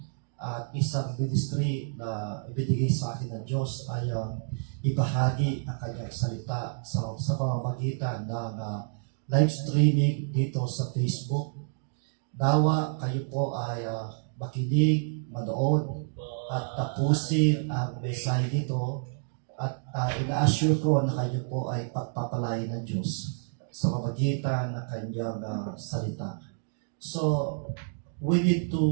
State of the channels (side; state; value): left; silent; digital silence